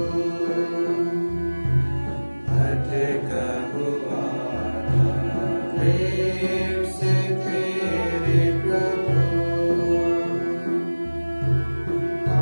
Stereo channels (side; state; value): both; inverted; correlation -1.00